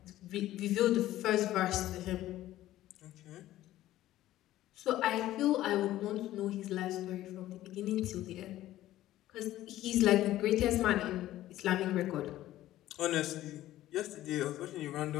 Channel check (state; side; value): quieter; right; 14.5 dB